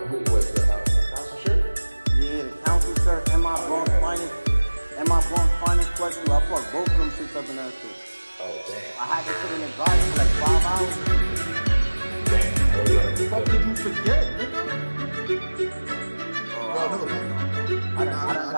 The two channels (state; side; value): inverted; both; correlation -1.00